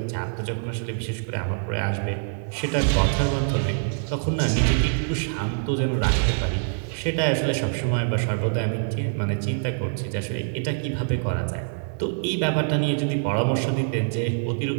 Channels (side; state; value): left; silent; 56 dB below the other